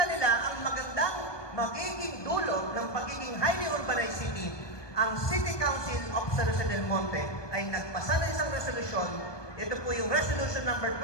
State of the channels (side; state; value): right; late; 1.2 ms